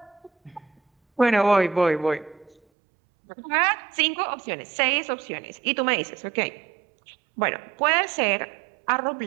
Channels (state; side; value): drops out; left; at 2.6 s